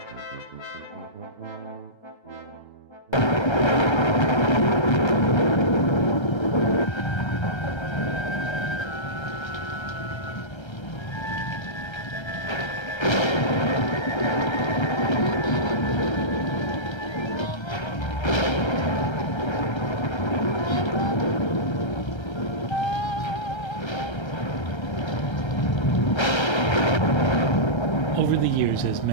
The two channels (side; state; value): right; late; 1.3 ms